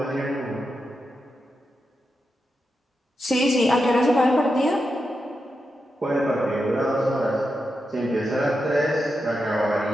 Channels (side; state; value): both; normal; correlation 0.87